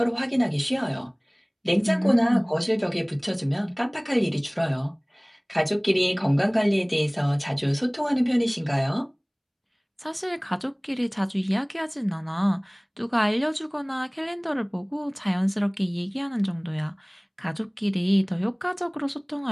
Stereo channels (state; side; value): identical; both; correlation 1.00